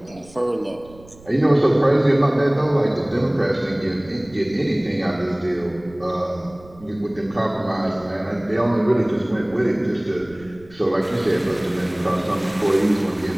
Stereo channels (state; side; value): noise; right; rumble, 23 dB below the sound